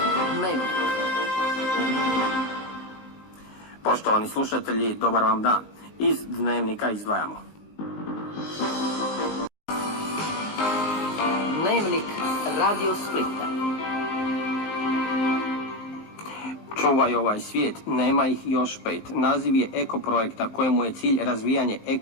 Dnevnik. Poštovani slušatelji, dobar vam dan. Iz Dnevnika izdvajamo. Dnevnik Radio Splita. Čuvaj ovaj svijet, nema ih još 5. Naziv je eko projekta kojemu je cilj razvijanje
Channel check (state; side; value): late; right; 19 ms